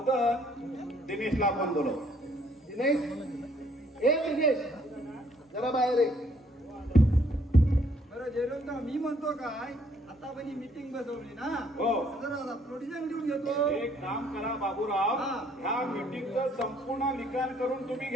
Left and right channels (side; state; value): both; normal; correlation 0.65